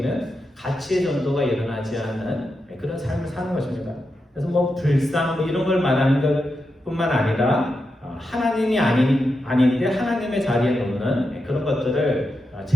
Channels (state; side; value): normal; both; correlation 0.87